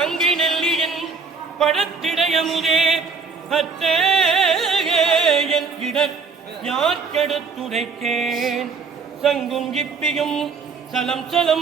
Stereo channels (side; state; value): left; quieter; 5.0 dB